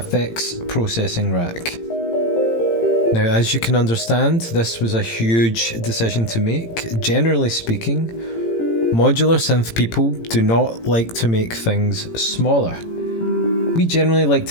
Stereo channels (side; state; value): right; late; 18 ms